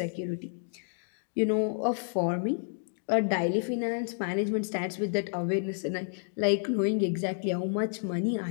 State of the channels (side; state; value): right; silent; digital silence